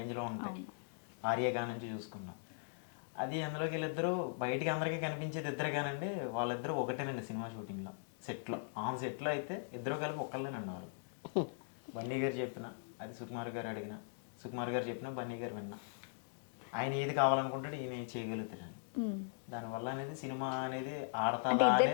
ఉంటాయి. ఆర్యగా నుంచి చూసుకున్నా అది అందులోకి వీళ్ళిద్దరూ బయటికి అందరికీ కనిపించేది ఇద్దరు కానండి, వాళ్ళిద్దరూ ఒకటేనండి సినిమా షూటింగ్లో. సెట్లో ఆన్ సెట్లో అయితే ఇద్దరు కలిపి ఒక్కళ్ళేనండి వాళ్ళు. బన్నీ గారు చెప్పిన, అది సుకుమార్ గారు అడిగిన, సుకుమార్ గారు చెప్పిన బన్నీ గారు విన్నా. ఆయన ఏది కావాలనుకుంటాడు ఈయన చేయగలుగుతాడని. దానివల్ల అనేది సినిమా అనేది అంటే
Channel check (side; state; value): right; silent; digital silence